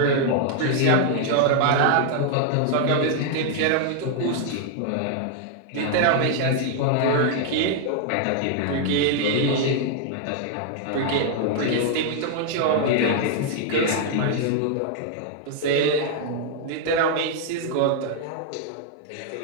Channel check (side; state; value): both; different; correlation 0.00